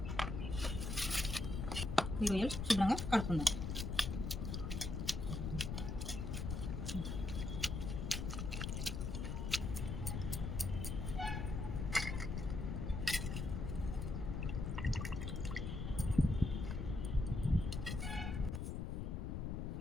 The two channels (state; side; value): noise; left; rumble, 2 dB below the sound